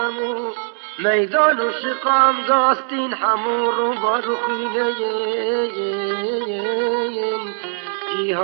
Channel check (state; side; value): silent; left; digital silence